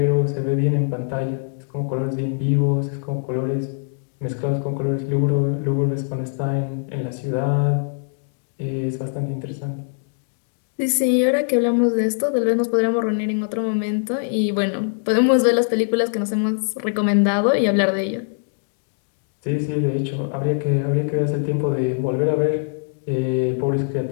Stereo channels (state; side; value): silent; right; digital silence